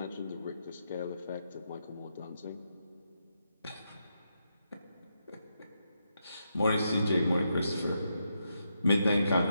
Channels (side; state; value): both; inverted; correlation -0.83